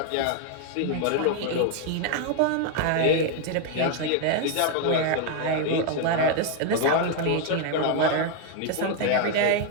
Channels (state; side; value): different; both; correlation 0.00